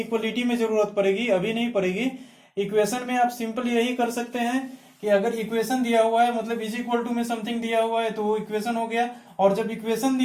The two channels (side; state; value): both; identical; correlation 1.00